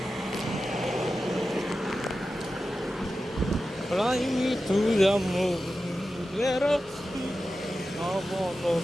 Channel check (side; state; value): both; normal; correlation 0.93